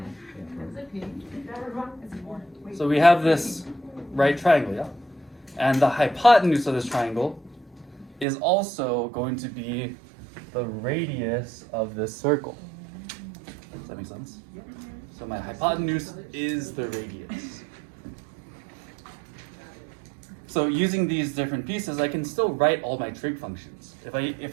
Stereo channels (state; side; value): drops out; left; at 8.2 s